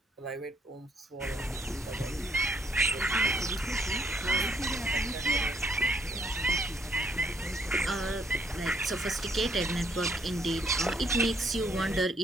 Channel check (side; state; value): both; normal; correlation 0.68